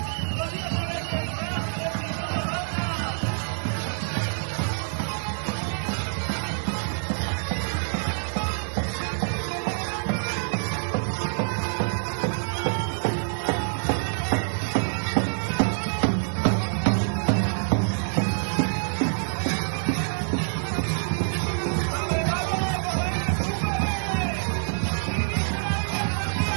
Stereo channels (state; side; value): silent; left; 61 dB below the other